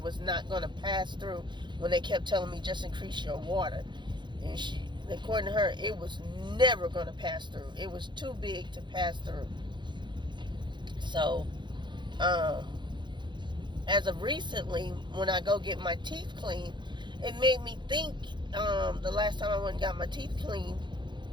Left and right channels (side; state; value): left; late; 0.22 ms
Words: was not going to pass through, when they kept telling me just increase your water. And according to her, it was never going to pass through. It was too big to pass through. So, as of recently, when I go get my teeth cleaned, it made me think, the last time I went and got my teeth cleaned,